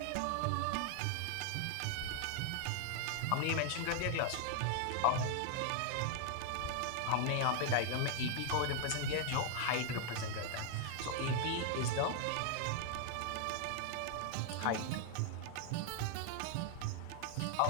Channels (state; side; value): different; both; correlation 0.00